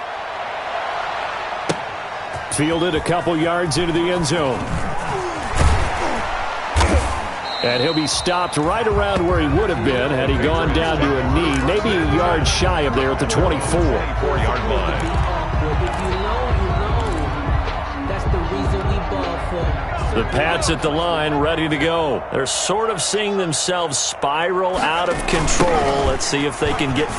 Fielded a couple yards into the end zone. And he'll be stopped right around where he would have been had he gone down to a knee, maybe a yard shy of there at the 24. 4-yard line. The Pats at the line, ready to go. They're sort of seeing themselves spiral out of control. Let's see if they can get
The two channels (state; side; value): identical; both; correlation 1.00